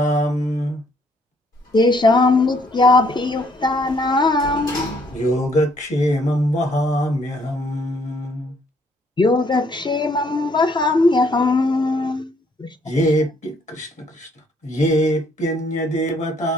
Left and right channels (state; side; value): normal; both; correlation 0.67